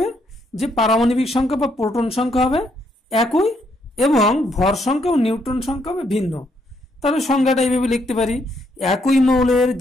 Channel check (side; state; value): both; normal; correlation 0.73